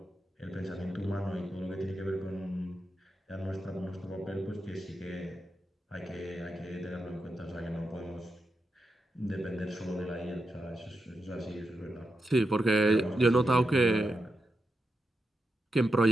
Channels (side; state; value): both; normal; correlation 0.87